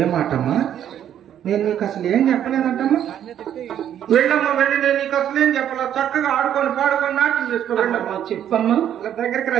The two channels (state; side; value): quieter; left; 10.2 dB